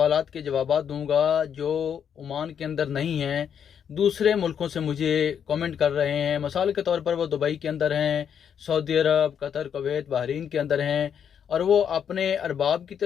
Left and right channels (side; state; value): right; quieter; 8.1 dB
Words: के जवाब दूंगा जो ओमान के अंदर नहीं हैं, दूसरे मुल्कों से मुझे कमेंट कर रहे हैं। मिसाल के तौर पर वो दुबई के अंदर हैं, सऊदी अरब, कतर, कुवैत, बहरीन के अंदर हैं और वो अपने अरबाब की